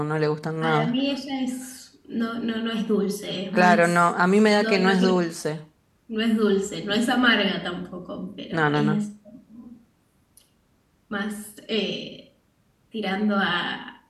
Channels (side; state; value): both; identical; correlation 1.00